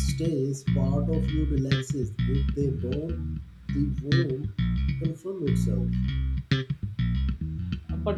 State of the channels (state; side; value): identical; both; correlation 1.00